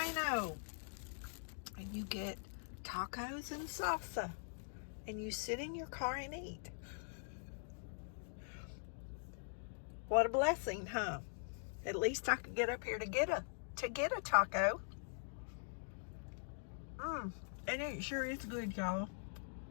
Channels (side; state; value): right; silent; digital silence